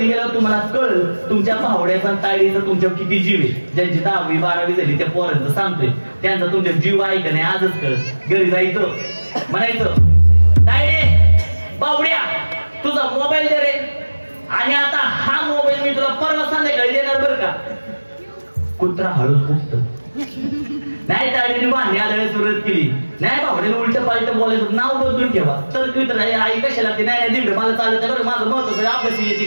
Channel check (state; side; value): inverted; both; correlation -1.00